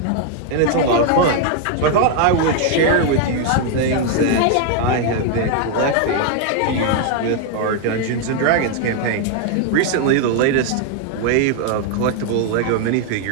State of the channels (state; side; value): different; both; correlation 0.00